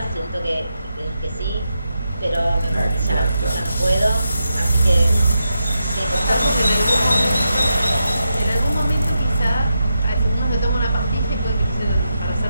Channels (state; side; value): inverted; both; correlation -0.86